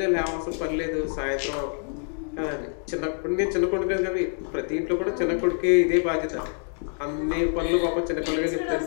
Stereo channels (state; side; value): silent; right; 57 dB below the other